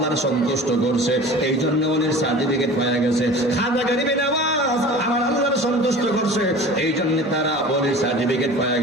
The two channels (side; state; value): both; normal; correlation 0.40